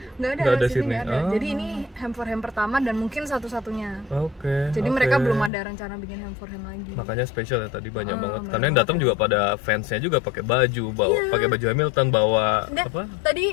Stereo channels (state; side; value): drops out; right; at 5.5 s